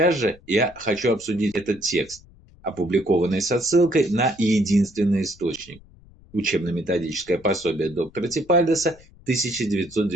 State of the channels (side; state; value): left; noise; rumble, 25 dB below the sound